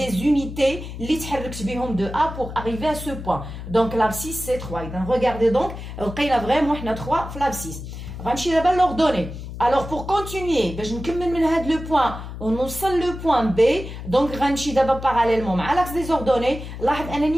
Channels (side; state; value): left; noise; hum, 10 dB below the sound